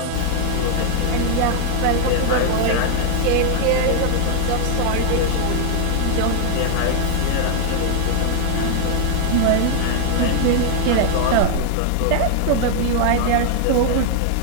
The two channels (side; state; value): both; different; correlation 0.00